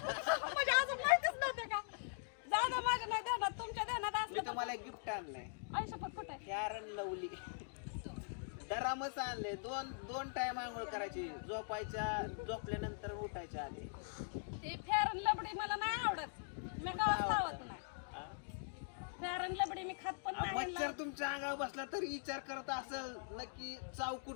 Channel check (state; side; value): silent; right; digital silence